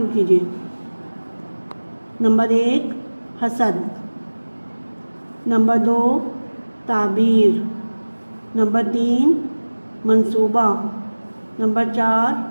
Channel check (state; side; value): inverted; both; correlation -1.00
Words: کیجیے۔ نمبر 1، حسد۔ نمبر 2، تعبیر۔ نمبر 3، منصوبہ۔ نمبر 4،